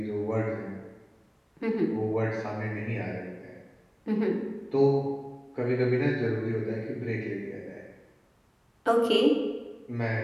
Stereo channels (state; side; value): identical; both; correlation 1.00